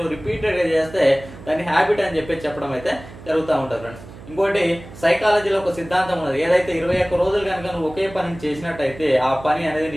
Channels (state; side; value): noise; right; hum, 17 dB below the sound